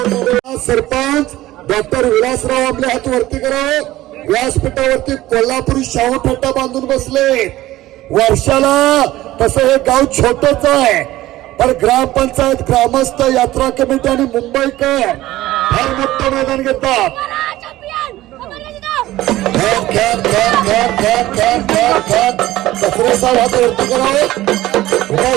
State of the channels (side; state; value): left; quieter; 16.1 dB